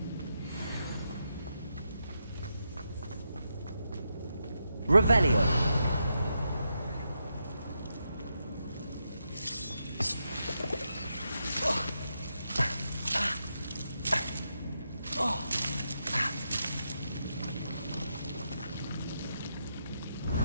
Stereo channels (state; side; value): inverted; both; correlation -0.84